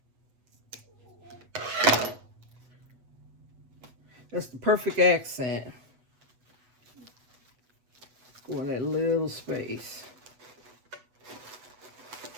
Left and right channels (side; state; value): left; late; 8.1 ms